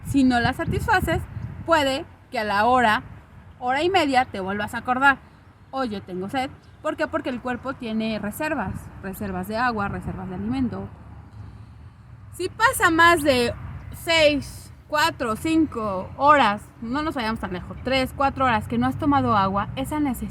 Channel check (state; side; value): identical; both; correlation 1.00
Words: Si no la satisfaces, puede que a la hora y media te vuelvas a acordar. Oye, tengo sed. ¿Por qué? Porque el cuerpo tiene reservas de agua, reservas de alimento. Si pasa más de 6, 4, 5 horas, no nos vayamos tan lejos, 3, 4 horas que no has tomado agua, esa